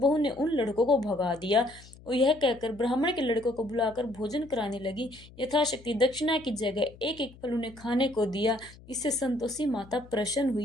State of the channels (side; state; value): left; noise; hum, 21 dB below the sound